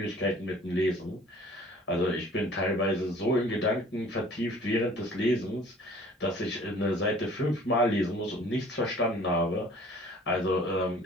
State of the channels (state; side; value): normal; both; correlation 0.51